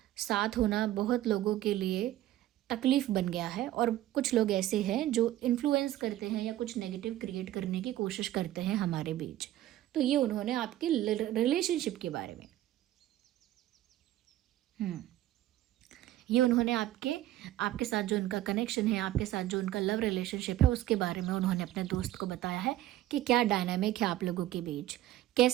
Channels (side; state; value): left; quieter; 14.1 dB